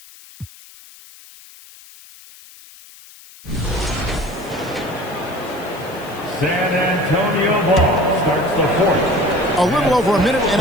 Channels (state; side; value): noise; left; hiss, 21 dB below the sound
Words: San Antonio ball starts the fourth. A little over a minute and